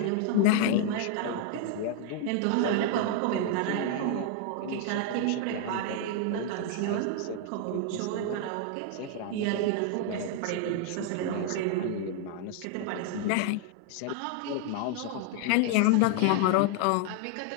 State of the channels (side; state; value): both; different; correlation 0.00